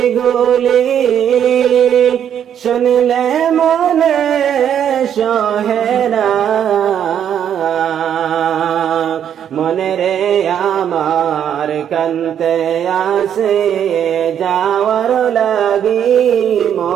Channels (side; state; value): left; quieter; 9.2 dB